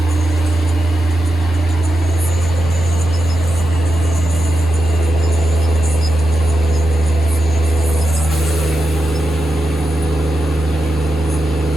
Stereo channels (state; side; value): normal; both; correlation 0.88